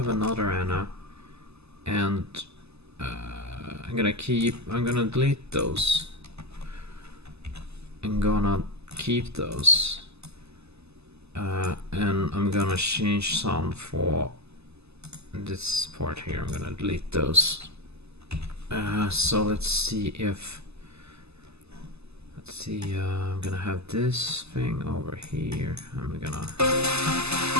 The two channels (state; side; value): late; left; 0.79 ms